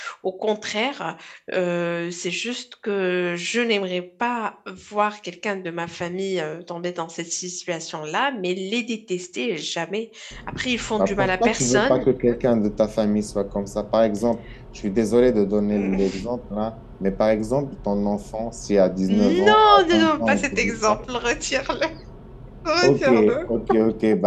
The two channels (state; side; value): identical; both; correlation 1.00